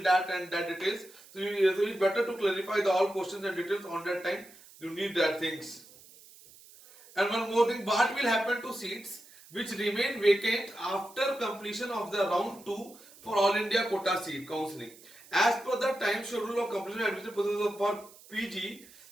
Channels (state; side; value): noise; right; hiss, 22 dB below the sound